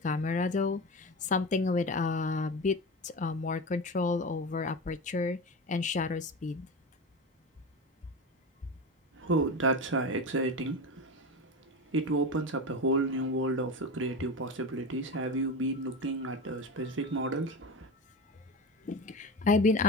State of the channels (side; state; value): both; normal; correlation 0.24